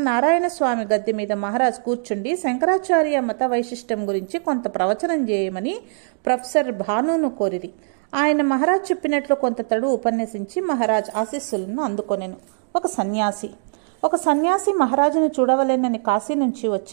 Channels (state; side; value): silent; left; digital silence